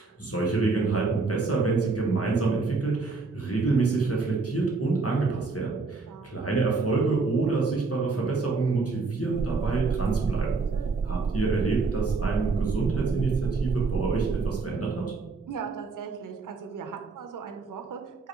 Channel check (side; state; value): left; quieter; 4.1 dB